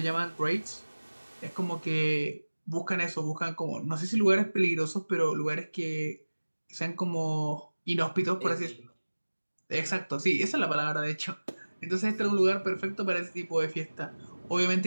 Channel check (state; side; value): inverted; both; correlation -1.00